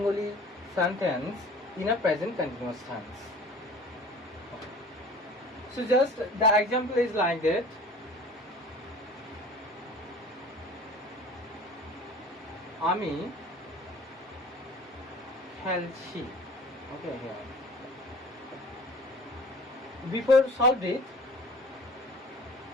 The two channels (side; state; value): both; normal; correlation 0.44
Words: sentence in a present continuous tense. Okay. So just the example is like that. আমি খেলছি. Okay, here. Before solve it,